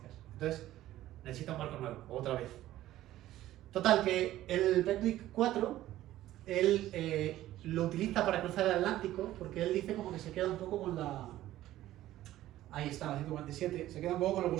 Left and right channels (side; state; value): left; quieter; 14.4 dB